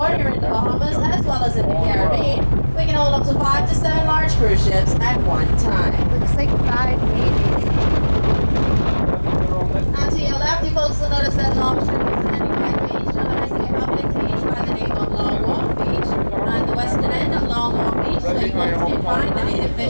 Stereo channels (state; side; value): inverted; both; correlation -1.00